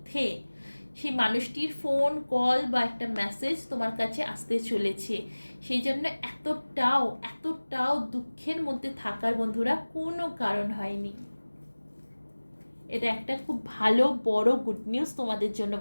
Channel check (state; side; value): inverted; both; correlation -1.00